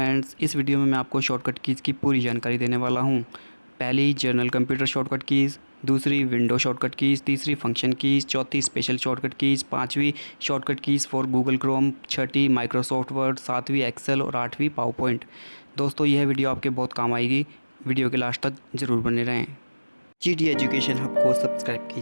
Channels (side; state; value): both; inverted; correlation -1.00